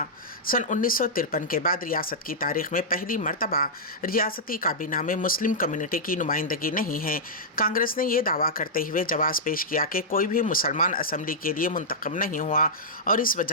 सन 1953 के बाद रियासत की तारीख में पहली मरतबा रियासती काबीना में मुस्लिम कम्युनिटी की नुमाइंदगी नहीं है। कांग्रेस ने यह दावा करते हुए जवाब पेश किया कि कोई भी मुसलमान असम्बली के लिए मुंतखब नहीं हुआ और इस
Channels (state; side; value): normal; both; correlation -0.10